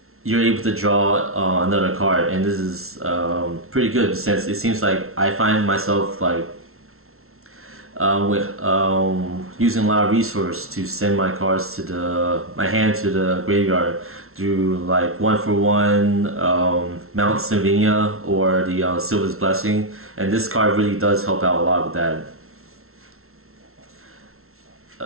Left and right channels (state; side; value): late; left; 0.62 ms